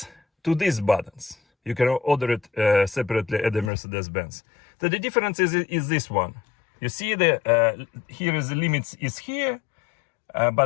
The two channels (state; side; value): drops out; right; at 3.7 s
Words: to these buttons. You can order it separately at the Mercedes-Benz. So the difference is this one. You see the here is the limits is here.